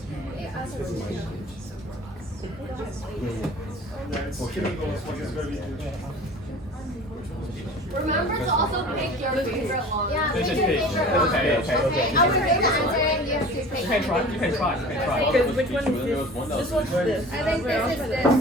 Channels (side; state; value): both; normal; correlation 0.41